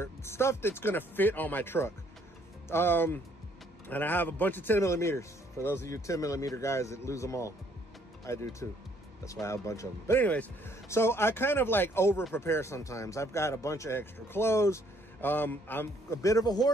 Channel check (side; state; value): both; normal; correlation 0.65